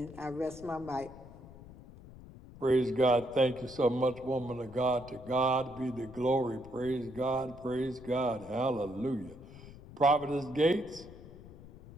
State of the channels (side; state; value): left; noise; rumble, 18 dB below the sound